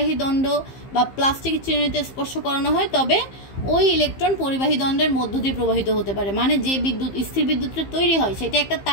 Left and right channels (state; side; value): late; right; 15 ms